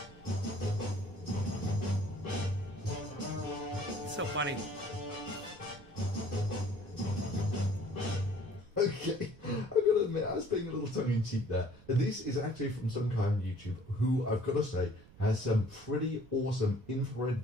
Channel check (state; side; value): noise; right; rumble, 23 dB below the sound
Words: It's so funny. Okay, I've got to admit, I was being a little tongue-in-cheek there. This is actually from some guy on YouTube who, I've got to say, has some pretty awesome infrared